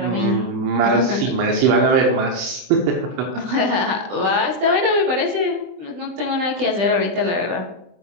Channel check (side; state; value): left; late; 23 ms